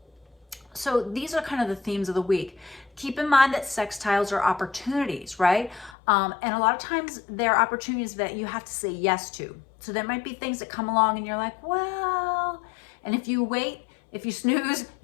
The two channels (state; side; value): drops out; right; at 6.0 s